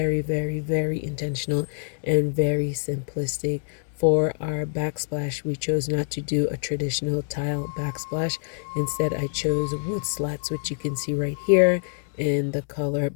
very, very intentional and very simplistic. For our backsplash, we chose not to do a traditional tile backsplash. Instead, I chose wood slats, which you can see right here in the color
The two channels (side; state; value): right; silent; digital silence